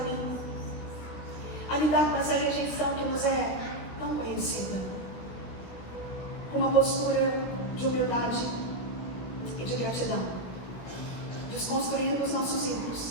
mim, a lidar com essa rejeição que nos é tão conhecida, com uma postura de humildade e de gratidão, desconstruindo os nossos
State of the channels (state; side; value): late; right; 17 ms